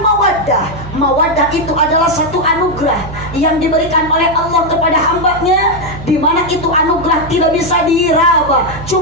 Mawaddah itu adalah satu anugerah yang diberikan oleh Allah kepada hambanya, di mana itu anugerah tidak bisa diraba,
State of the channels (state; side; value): noise; right; hum, 13 dB below the sound